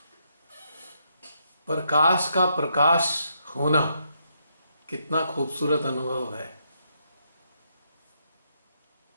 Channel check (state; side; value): inverted; both; correlation -0.77